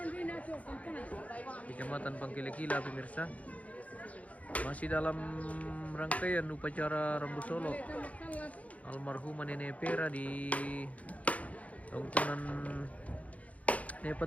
Kecamatan Pangkilekila pemirsa. Masih dalam rangkaian upacara Rambu Solo almarhumah Nenek Pera di Tongkonan nih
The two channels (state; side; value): late; right; 0.068 ms